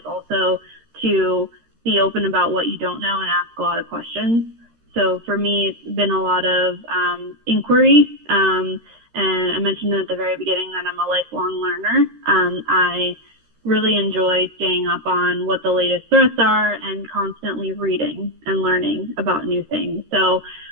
also to be open about what you don't know and ask a lot of questions. So for me, it's been a lot of inquiry. And I mentioned at the very beginning that I'm a lifelong learner. I really enjoy staying up on what the latest threats are and constantly reading and learning about new things. So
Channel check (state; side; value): late; left; 13 ms